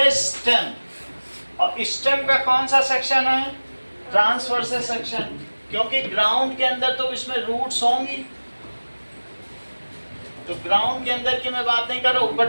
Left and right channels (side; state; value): both; inverted; correlation -1.00